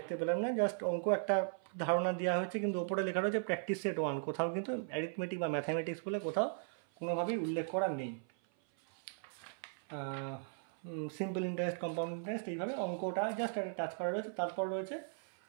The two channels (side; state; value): left; silent; 53 dB below the other